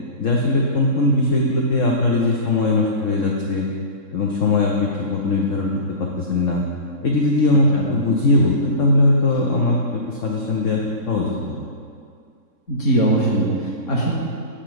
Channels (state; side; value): late; right; 3.7 ms